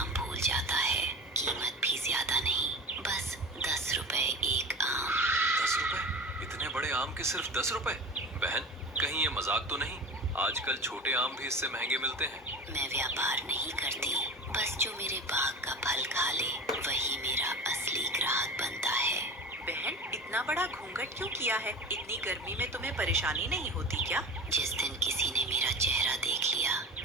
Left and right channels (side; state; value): both; normal; correlation 0.35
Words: भूल जाता है। कीमत भी ज्यादा नहीं, बस 10 रुपए एक आम। 10 रुपए? इतने बड़े आम के सिर्फ 10 रुपए? बहन, कहीं ये मजाक तो नहीं? आजकल छोटे आम भी इससे महंगे मिलते हैं। मैं व्यापार नहीं करती, बस जो मेरे बाग का फल खा ले वही मेरा असली ग्राहक बनता है। बहन, इतना बड़ा घूंघट क्यों किया है? इतनी गर्मी में तुम्हें परेशानी नहीं होती क्या? जिस दिन किसी ने मेरा चेहरा देख लिया